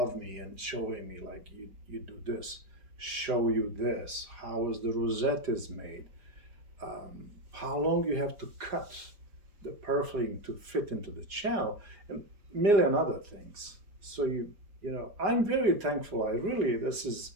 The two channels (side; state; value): left; late; 4.9 ms